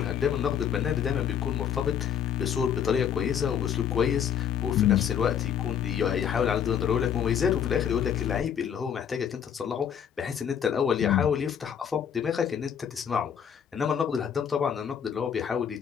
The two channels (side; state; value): right; quieter; 8.5 dB